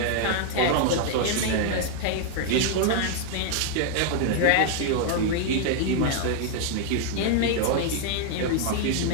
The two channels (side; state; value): both; different; correlation 0.00